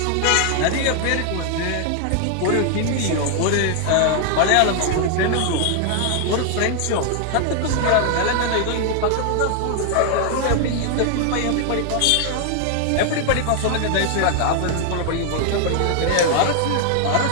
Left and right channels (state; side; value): different; both; correlation 0.00